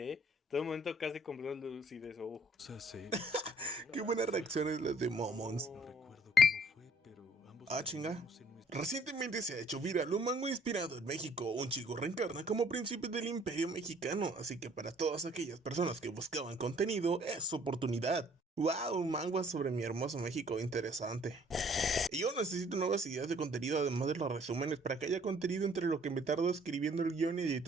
¿eh? Todo el momento casi cumplió lucidez. Qué buenas reacciones las de Momons. Ah, chinga. Recientemente se ha hecho viral un manga inspirado en México. Un chico reencarna como príncipe del Imperio Mexicano, así que para todas aquellas personas que buscaban contenido, es su oportunidad. ¡Wow! Un manga sobre mi hermoso México, interesante. Y yo necesito nuevas ideas de contenido además de los resúmenes para que haya contenido entre lo que me tardo escribiendo el guión y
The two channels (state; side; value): normal; both; correlation 0.59